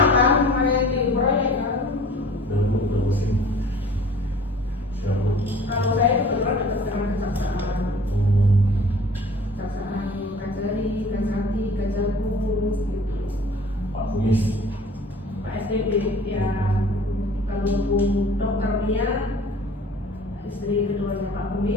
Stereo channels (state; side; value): normal; both; correlation 0.47